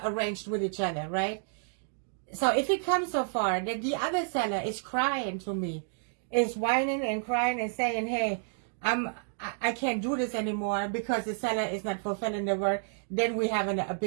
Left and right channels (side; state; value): left; silent; digital silence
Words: arranged with each other, right? So if it comes so far that the other seller is crying to me, is whining and crying and saying, hey, I can't do this anymore because the seller is not fulfilling the word, then we have a